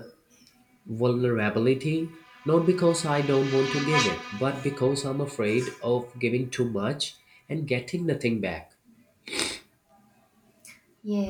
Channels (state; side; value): identical; both; correlation 1.00